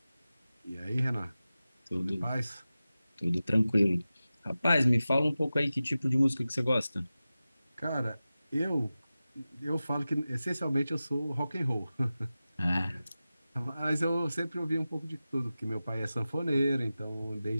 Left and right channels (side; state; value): both; inverted; correlation -0.95